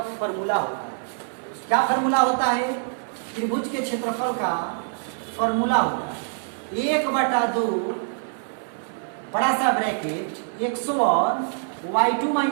फॉर्मूला होता है। क्या फॉर्मूला होता है? त्रिभुज के क्षेत्रफल का फॉर्मूला होता है 1/2 बड़ा सा ब्रैकेट x1 y2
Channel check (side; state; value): left; silent; 57 dB below the other